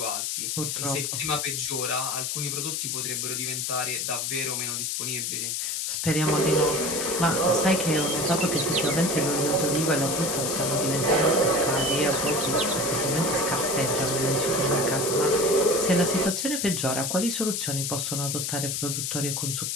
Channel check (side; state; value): left; noise; hiss, 1 dB below the sound